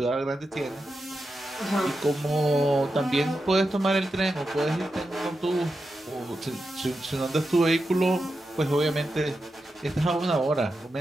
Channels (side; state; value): both; normal; correlation 0.89